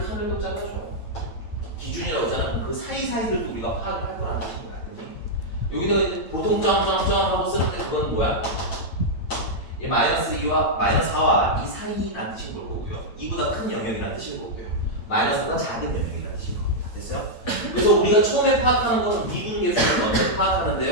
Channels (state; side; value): late; right; 8.9 ms